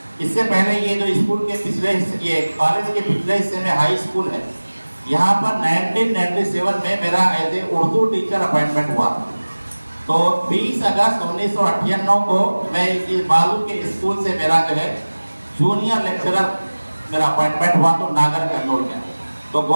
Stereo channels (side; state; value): both; inverted; correlation -1.00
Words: इससे पहले ये जो स्कूल के पिछले हिस्से, ये कॉलेज के पिछले हिस्से में हाई स्कूल है, यहाँ पर 1997 में मेरा as a Urdu teacher appointment हुआ। तो 20 अगस्त 1998 को मैं इस बालू के स्कूल से मेरा जो है जूनियर लेक्चरर मेरा अपॉइंटमेंट हुआ, तो नागर कन्नौर का। तो